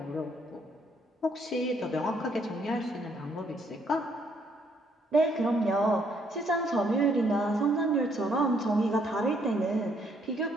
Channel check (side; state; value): both; normal; correlation 0.69